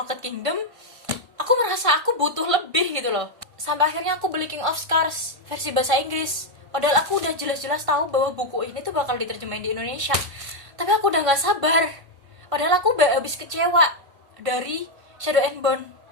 Kingdom, aku merasa aku butuh lebih gitu loh. Sampai akhirnya aku beli King of Scars versi bahasa Inggris. Padahal aku udah jelas-jelas tahu bahwa buku ini tuh bakal diterjemahin di Indonesia. Tapi aku udah gak sabar. Padahal aku udah habis kecewa dari Shadow and Bone,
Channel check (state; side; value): late; left; 1.5 ms